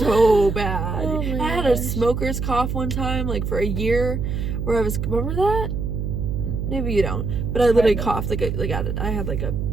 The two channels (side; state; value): right; noise; hum, 2 dB below the sound